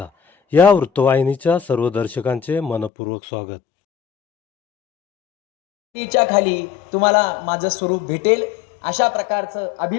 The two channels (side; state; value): right; drops out; at 2.9 s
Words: या वृत्तवाहिनीच्या सर्व दर्शकांचे मनपूर्वक स्वागत. च्या खाली तुम्हाला माझं स्वरूप भेटेल अशा प्रकारचं